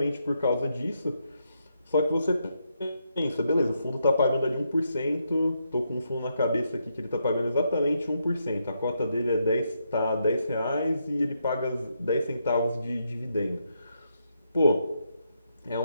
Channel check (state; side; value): inverted; both; correlation -0.80